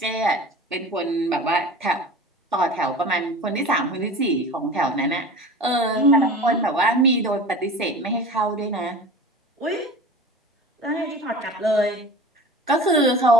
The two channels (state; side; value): normal; both; correlation 0.37